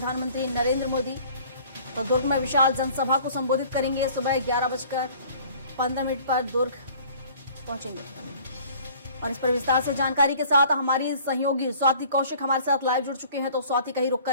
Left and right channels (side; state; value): both; inverted; correlation -0.51